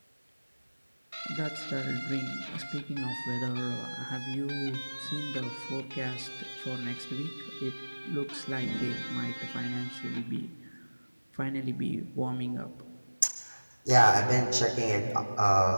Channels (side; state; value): both; inverted; correlation -1.00